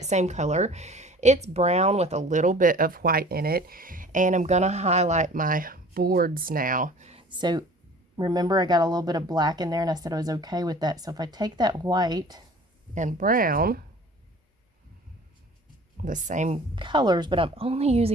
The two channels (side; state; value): both; normal; correlation 0.47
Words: same color. It's brown with a little bit of white in it, and I'm going to highlight my boards now. So remember, I got a little bit of black in there, and I said I was okay with that. So if I take that white and brown, the same colors, but I'm only